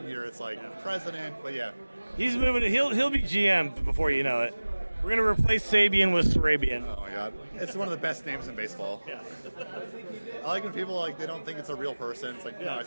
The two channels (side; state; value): both; inverted; correlation -1.00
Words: year it's like president. But yeah, He's moving. He'll be GM before you know it. We're gonna replace Sabian with Sarabian. oh my god, it's one of the best names in baseball. Yeah. I like when people like they don't think it's a real person. It's like, no, I